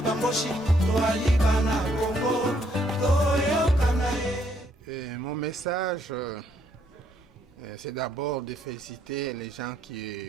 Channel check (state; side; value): normal; both; correlation 0.70